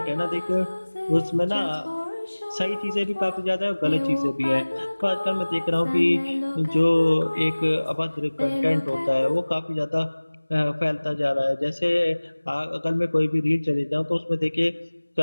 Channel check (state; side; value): inverted; both; correlation -1.00